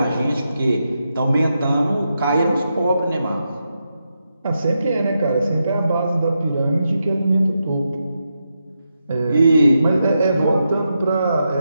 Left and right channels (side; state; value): both; inverted; correlation -0.85